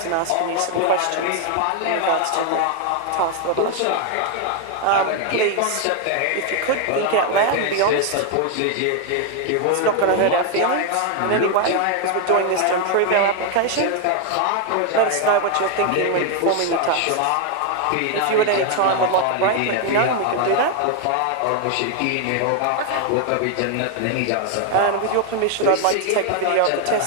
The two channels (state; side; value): different; both; correlation 0.00